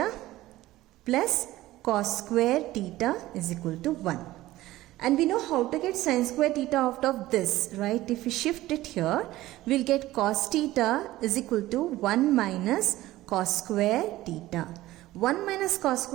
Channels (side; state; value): left; quieter; 16.5 dB